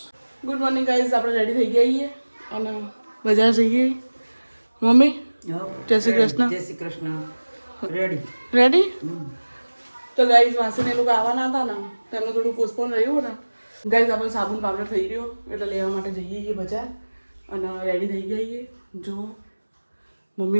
ગુડ મોર્નિંગ ગાઈસ, આપણે રેડી થઈ ગયા છીએ અને બજાર જઈએ. મમ્મી જય શ્રી કૃષ્ણ. જય શ્રી કૃષ્ણ. Ready ready. તો ગાઈસ માસીને એ લોકો આવવાના હતા ને, તેમનું થોડું પોસ્ટપોન રહ્યું ને. ગાઈસ આપણે સાબુન પાવડર થઈ રહ્યો એટલે લેવા માટે જઈએ છીએ બજાર અને રેડી થઈ ગયા છીએ. જો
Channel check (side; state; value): both; inverted; correlation -1.00